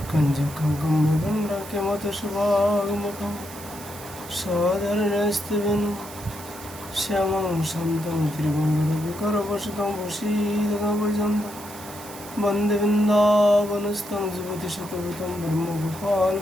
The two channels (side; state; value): right; noise; hiss, 16 dB below the sound